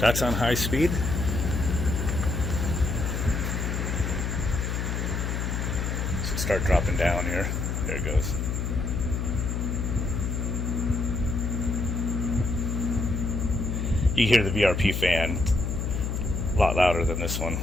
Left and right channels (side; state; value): left; noise; hum, 1 dB below the sound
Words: on high speed. Start dropping down here. There it goes. You hear the VRP fan a lot louder than this one.